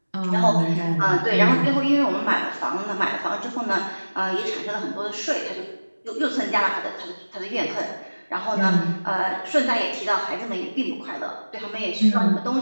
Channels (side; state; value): both; inverted; correlation -1.00